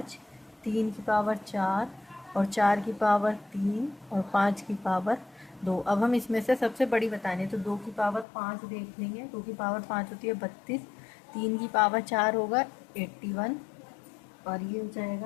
3 की पावर 4 और 4 की पावर 3 और 5 की पावर 2। अब हम इसमें से सबसे बड़ी बतानी है, तो 2 की पावर 5 देख लेंगे। 2 की पावर 5 होती है 32, 3 की पावर 4 होगा 81 और ये हो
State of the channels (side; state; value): right; drops out; at 8.2 s